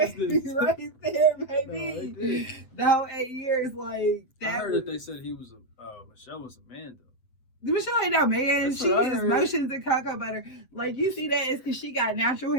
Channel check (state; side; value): late; right; 7.9 ms